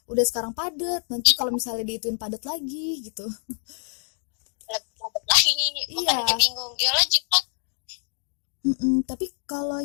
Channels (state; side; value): silent; right; 61 dB below the other